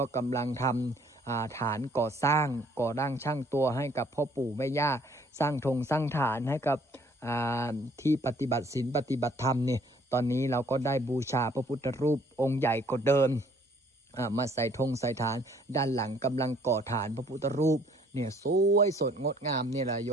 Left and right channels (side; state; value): both; normal; correlation 0.60